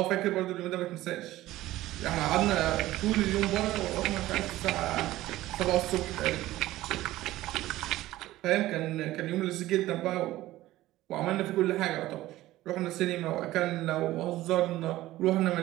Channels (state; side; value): quieter; left; 16.1 dB